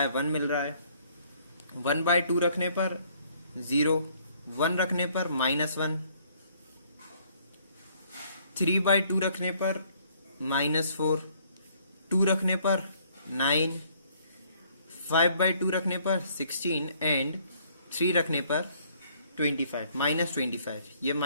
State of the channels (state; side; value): inverted; both; correlation -0.63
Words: 1 मिल रहा है। 1/2 रखने पर 0, 1 रखने पर -1, 3/2 रखने पर -4, 2 रखने पर 9, 5/2 रखने पर 16 एंड 3 रखने पर 25, -25। ये